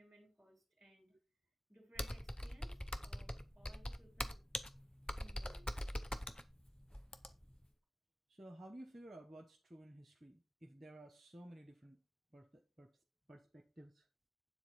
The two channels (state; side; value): normal; both; correlation 0.91